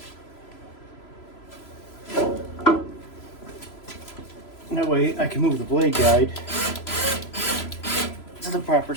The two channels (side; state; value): right; late; 3.0 ms